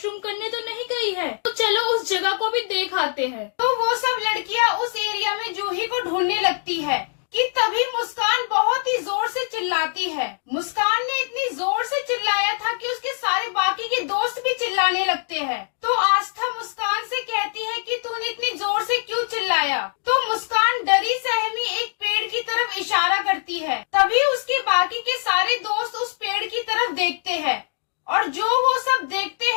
करने तो नहीं गई है, तो चलो उस जगह को भी देख आते हैं। तो वो सब लड़कियां उस एरिया में जूही को ढूंढने लगती है कि तभी मुस्कान बहुत ही जोर से चिल्लाती है। मुस्कान ने इतनी जोर से चिल्लाया था कि उसके सारे बाकी के दोस्त भी चिल्लाने लगते हैं। तो आस्था मुस्कान से कहती है कि तूने इतनी जोर से क्यों चिल्लाया। तो मुस्कान डरी सहमी एक पेड़ की तरफ इशारा करती है। तभी उसके बाकी के सारे दोस्त उस पेड़ की तरफ देखते हैं और जो वो सब देखते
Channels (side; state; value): right; silent; digital silence